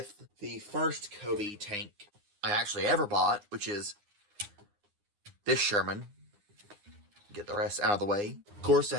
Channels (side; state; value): left; late; 9.8 ms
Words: the first Cobi tank I actually ever bought, which is this Sherman. Get the rest out of the way. Of course,